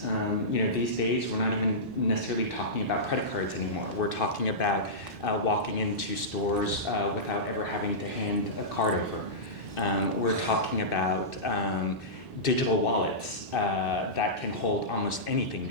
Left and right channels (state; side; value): normal; both; correlation -0.17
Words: You know, these days we're not even necessarily talking about credit cards anymore. We're talking about walking into stores without ever having to hand a card over. We're talking about digital wallets that can hold almost anything